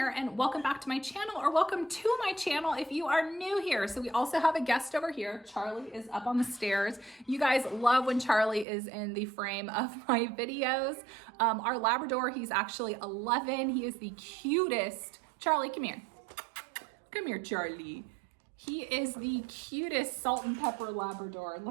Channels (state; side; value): drops out; left; at 8.7 s